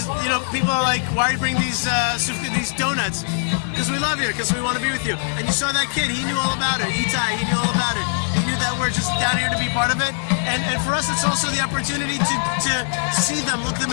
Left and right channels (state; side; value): silent; right; digital silence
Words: know, people are like, why are you bringing these donuts? Because we love you, because we want to be with you. And you saw that kid, he knew all about it. Itai, he knew all about it. He knew that we're just down here to be part of it. And for us, it's also the opportunity to see them, look them